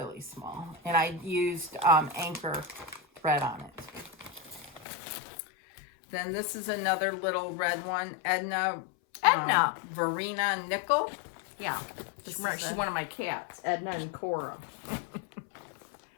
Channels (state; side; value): drops out; right; at 4.9 s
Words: small. And I used anchor thread on it. Then this is another little red one, Edna Verena Nickel. Yeah, she's one of my cats, Edna and Cora.